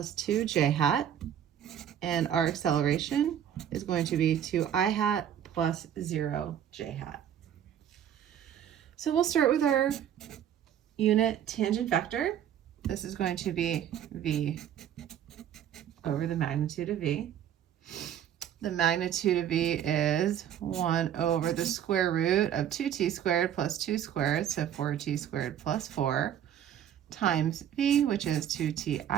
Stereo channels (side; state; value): left; quieter; 9.9 dB